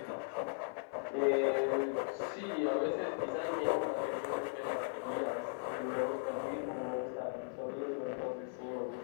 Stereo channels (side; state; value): right; silent; 53 dB below the other